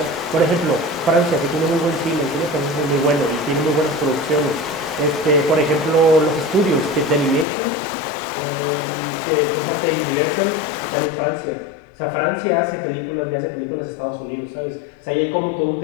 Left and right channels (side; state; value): right; drops out; at 7.5 s